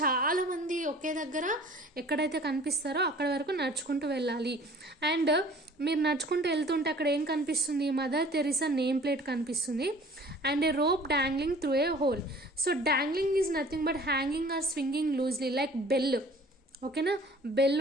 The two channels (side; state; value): both; normal; correlation 0.49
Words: చాలామంది ఒకే దగ్గర ఎక్కడైతే కనిపిస్తారో అక్కడ వరకు నడుచుకుంటూ వెళ్ళాలి. అండ్ మీరు నడుచుకుంటూ వెళ్తుంటే అక్కడ ఏం కనిపిస్తుంది, మదర్ తెరిసా నేమ్ ప్లేట్ కనిపిస్తుంది and a rope dangling through a hole. So dangling is nothing but hanging or swinging loosely like bell. ఓకేనా, బెల్